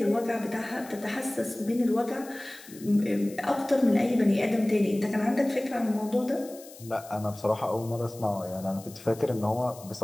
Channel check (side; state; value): left; noise; hiss, 19 dB below the sound